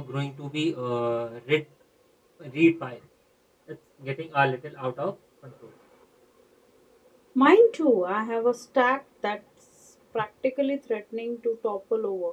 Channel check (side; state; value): both; identical; correlation 1.00